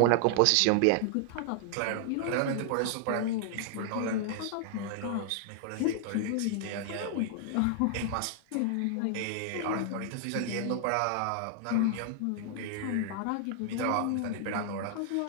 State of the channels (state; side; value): different; both; correlation 0.00